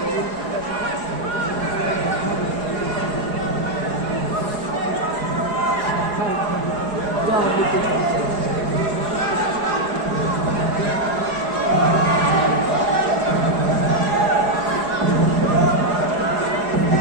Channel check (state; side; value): late; left; 4.8 ms